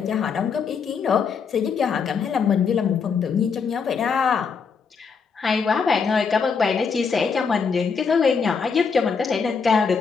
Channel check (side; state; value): right; quieter; 5.7 dB